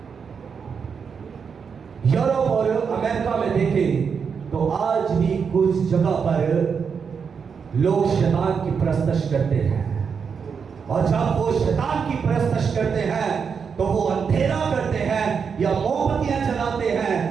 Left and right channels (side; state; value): left; quieter; 6.2 dB